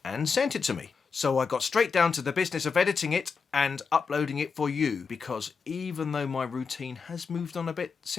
and sent it to me. So I got straight down to the business of editing it and uploading it for you, because even though my routine has moved on a bit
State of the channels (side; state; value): right; quieter; 5.4 dB